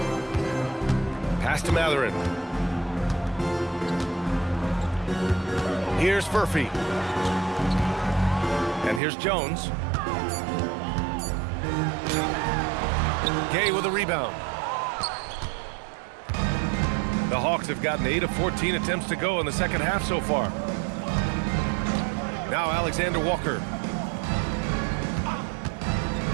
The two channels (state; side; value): drops out; left; at 9.0 s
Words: Pass to Mathurin. Here's Furphy. And here's Jones. Gay with a rebound. The Hawks have gotten 8 of 14 attempts to go in the second half so far. Now Alexander Walker.